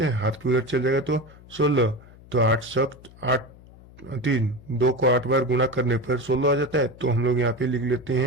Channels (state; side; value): noise; left; hum, 22 dB below the sound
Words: हैं, हाथ पे उधर चल जाएगा तो 16। तो 8 सख्त 8 3, 2 को 8 बार गुना करने पर 16 आ जाता है। तो हम लोग यहाँ पे लिख लेते